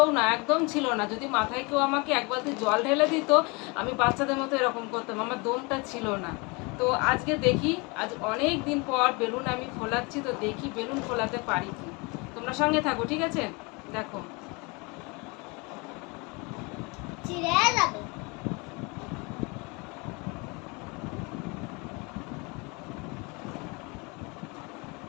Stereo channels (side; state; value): right; quieter; 28.7 dB